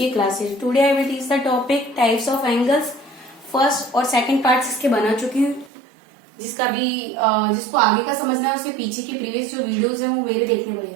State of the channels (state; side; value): drops out; left; at 5.7 s